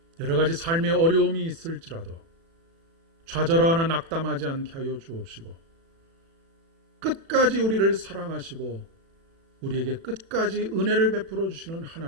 여러 가지 삶의 어려움이 있을지라도 좌절하거나 낙담하지 않게 하여 주옵시고 끝까지 우리를 사랑하시고 우리에게 끝까지 은혜를 베풀어 주시는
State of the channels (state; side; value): late; left; 36 ms